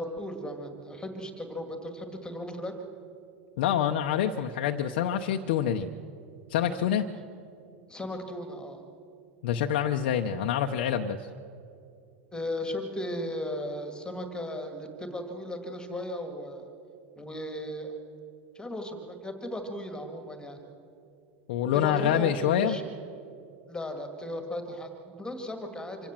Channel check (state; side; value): quieter; right; 6.4 dB